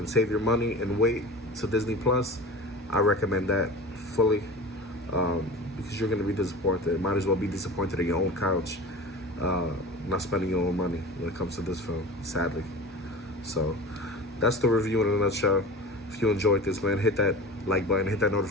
save your money and wait to Disney Plus, I recommend that fully, because you're going to be disappointed. Might as well be disappointed in your own couch, not spending your own money when it comes to this film, sadly. So that's the review in a nutshell. If you enjoyed this, man, hit that like button, hit that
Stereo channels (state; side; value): normal; both; correlation 0.34